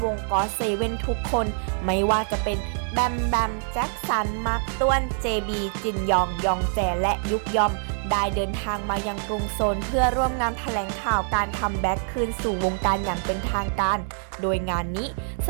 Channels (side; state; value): left; silent; 62 dB below the other